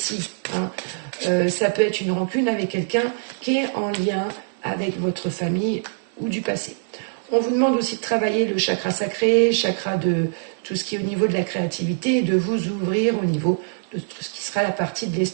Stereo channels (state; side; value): silent; left; digital silence